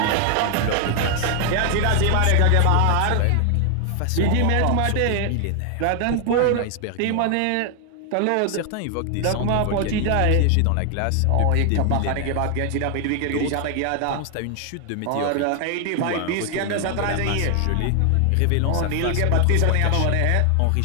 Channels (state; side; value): different; both; correlation 0.00